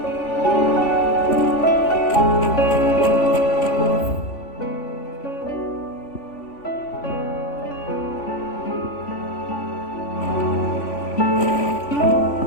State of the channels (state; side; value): late; right; 3.5 ms